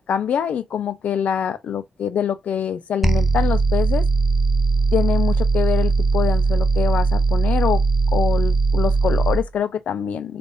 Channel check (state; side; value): normal; both; correlation 0.79